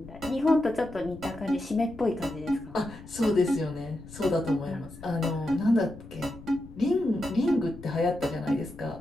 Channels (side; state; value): left; noise; rumble, 17 dB below the sound